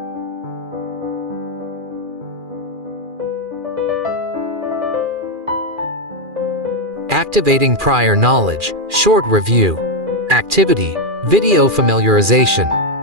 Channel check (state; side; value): late; left; 2.4 ms